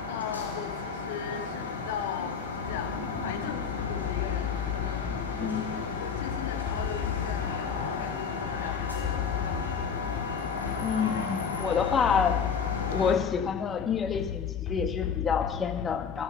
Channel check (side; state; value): right; quieter; 6.4 dB